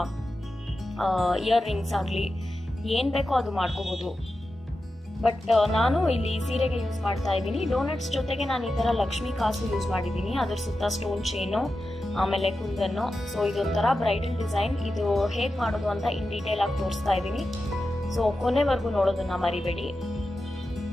ಇಯರ್ ರಿಂಗ್ಸ್ ಆಗಲಿ ಏನ್ ಬೇಕೋ ಅದು ಮಾಡ್ಕೋಬಹುದು. ಬಟ್ ನಾನು ಇಲ್ಲಿ ಸೀರೆಗೆ ಯೂಸ್ ಮಾಡ್ತಾ ಇದ್ದೀನಿ. ಡೋನಟ್ಸ್ ಜೊತೆಗೆ ನಾನು ಈ ತರ ಲಕ್ಷ್ಮಿ ಕಾಸು ಯೂಸ್ ಮಾಡಿದ್ದೀನಿ, ಅದ್ರ ಸುತ್ತ ಸ್ಟೋನ್ ಚೈನು, ಆಮೇಲೆ ಕುಂದನ್ನು. ಸೊ ಇದೊಂಥರ ಬ್ರೈಡಲ್ ಡಿಸೈನ್. ಇದು ಹೇಗ್ ಮಾಡೋದು ಅಂತ ಇನ್ ಡೀಟೇಲ್ ಆಗಿ ತೋರಿಸ್ತಾ ಇದ್ದೀನಿ. ಸೊ ಕೊನೆವರೆಗೂ ನೋಡೋದನ್ನ ಮರಿಬೇಡಿ.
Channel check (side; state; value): both; normal; correlation 0.91